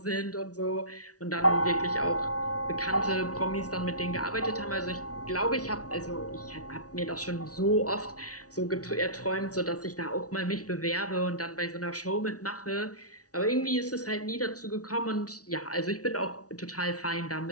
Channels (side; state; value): right; late; 0.68 ms